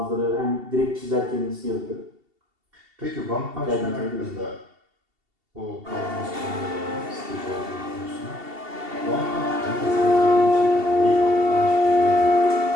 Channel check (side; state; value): left; late; 2.7 ms